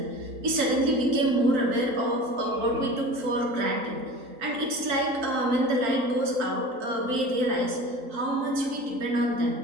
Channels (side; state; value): left; late; 3.8 ms